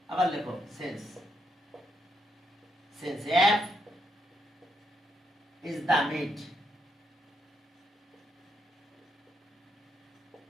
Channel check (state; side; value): normal; both; correlation 0.78